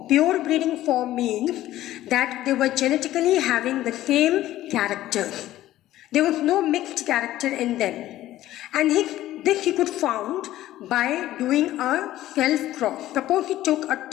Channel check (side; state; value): right; quieter; 14.4 dB